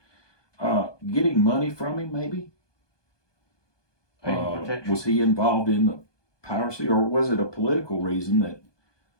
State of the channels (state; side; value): late; right; 1.2 ms